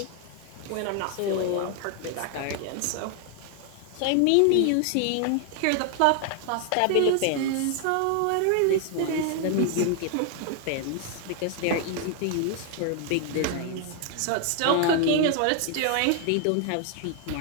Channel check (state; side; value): different; both; correlation 0.00